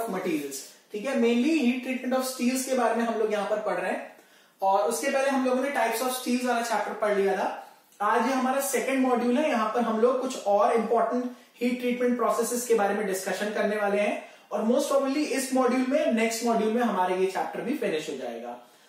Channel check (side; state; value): both; identical; correlation 1.00